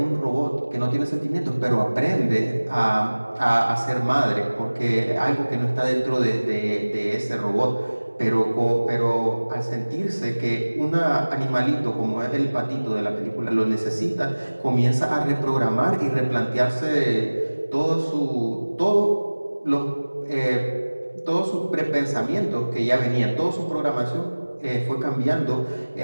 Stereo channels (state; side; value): inverted; both; correlation -1.00